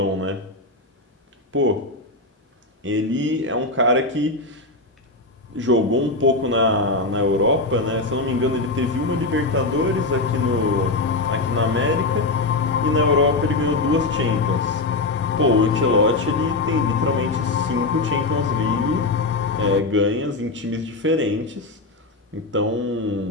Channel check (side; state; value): right; quieter; 3.1 dB